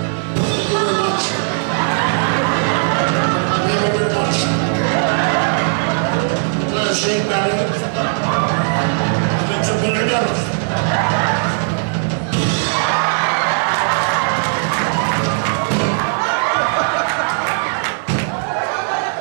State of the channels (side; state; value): left; silent; 64 dB below the other